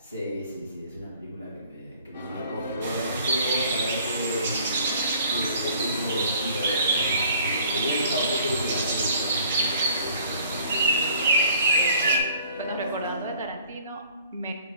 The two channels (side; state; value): both; inverted; correlation -0.55